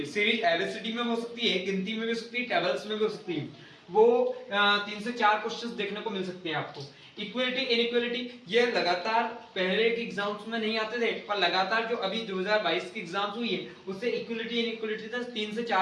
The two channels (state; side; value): identical; both; correlation 1.00